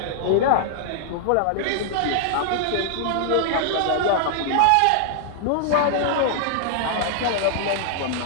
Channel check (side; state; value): both; different; correlation 0.00